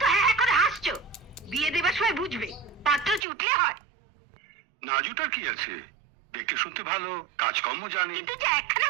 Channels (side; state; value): left; drops out; at 3.2 s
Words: তো হ্যাঁ করে হাসছো, বিয়ে দেবার সময় বুঝবে পাত্র চুটলে হয়। নাজুটার কি আছে, দেখতে শুনতে ভালো, কাজকর্ম জানি। কিন্তু যে একখানা